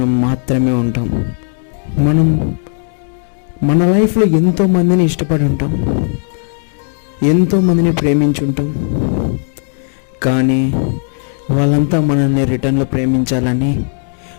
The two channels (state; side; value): silent; right; 58 dB below the other